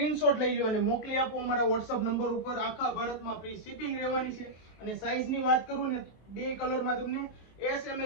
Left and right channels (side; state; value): right; late; 23 ms